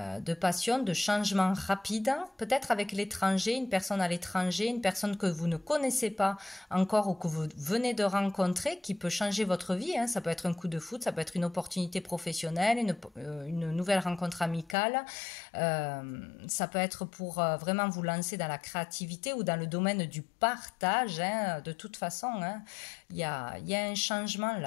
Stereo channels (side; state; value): right; drops out; at 14.8 s